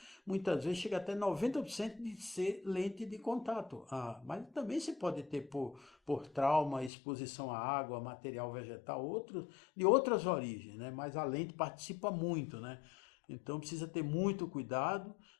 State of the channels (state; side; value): drops out; right; at 6.9 s